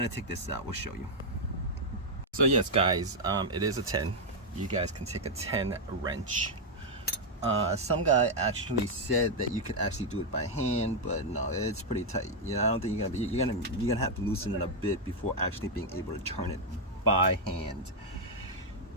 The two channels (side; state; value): both; normal; correlation -0.01